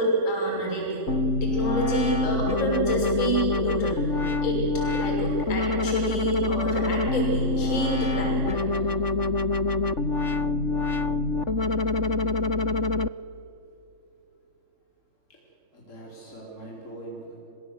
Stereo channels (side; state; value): right; late; 3.9 ms